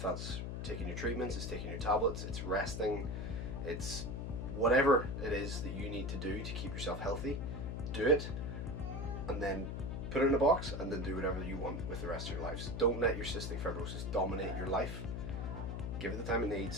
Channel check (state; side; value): noise; left; hum, 4 dB below the sound